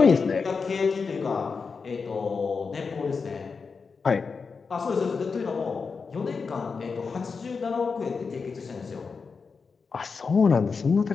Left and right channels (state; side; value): quieter; right; 5.0 dB